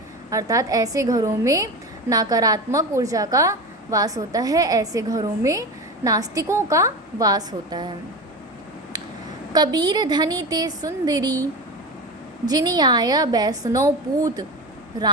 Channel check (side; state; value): both; normal; correlation 0.25